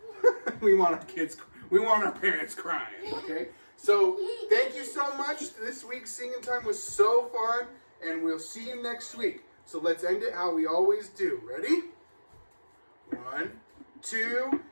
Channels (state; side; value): inverted; both; correlation -1.00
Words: We want our parents crying, okay? So thank you so much. This week's singing time was so fun, and we'll see you next week. So let's end it how we always do. Ready? 1, 2,